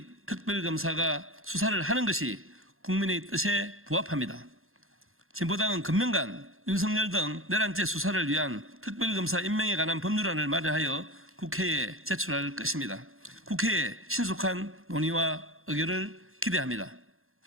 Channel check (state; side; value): late; left; 0.61 ms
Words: 특별검사가 수사를 하는 것이 국민의 뜻에 부합합니다. 진보당은 금명간 윤석열 등 내란죄 수사를 위한 특별검사 임명에 관한 법률안을 마련하여 국회에 제출할 것입니다. 국회의 신속한 논의와 의결을 기대합니다.